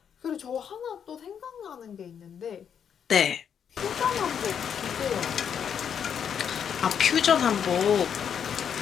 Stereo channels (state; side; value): quieter; right; 7.9 dB